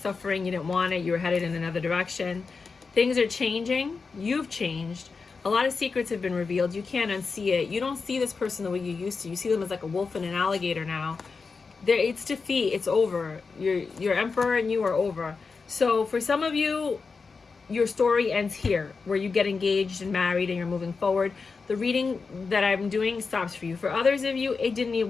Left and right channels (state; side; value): quieter; right; 4.7 dB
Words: You didn't want it. You were headed in another direction. Things are changing. You've changed. A lot of secrets have been revealed. You can't unsee it. You don't see this person the way you used to. You see them as like a wolf and an alligator now. It's defeat. It's over. Your Emperor and you are over. So for some of you, your story ends here, where you get engaged and married and you're moving forward. The reading that I'm doing stops for you. For others of you, it didn't need